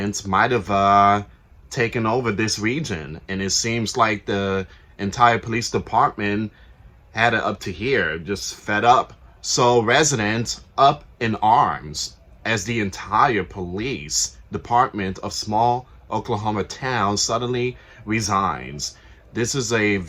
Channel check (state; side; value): identical; both; correlation 1.00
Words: might have taken over this region. And it seems like the entire police department had it up to here, just fed up. So residents up in arms as the entire police department of small Oklahoma town suddenly resigns. This is a